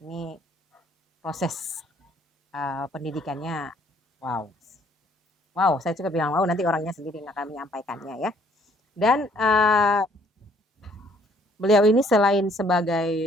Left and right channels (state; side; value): normal; both; correlation 0.63